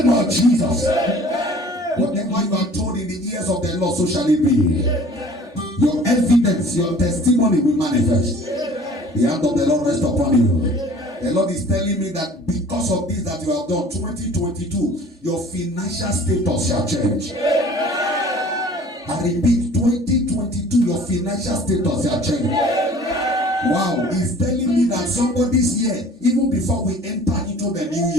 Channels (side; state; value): both; normal; correlation 0.49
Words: of Jesus. Whatever you are told in Lord, so shall it be. Your evidence, your testimony will manifest. The hand of the Lord rest upon you. The Lord is telling me that because of this that you have done, 2022, your financial status shall change. I repeat, 2022, your financial status shall change. Wow, he's telling me that somebody's year, even before we enter into the new